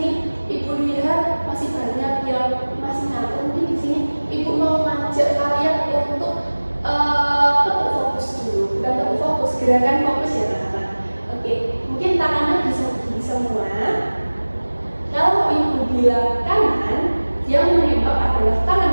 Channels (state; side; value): inverted; both; correlation -1.00